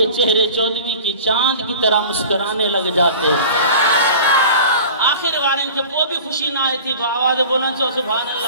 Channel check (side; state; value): both; inverted; correlation -0.40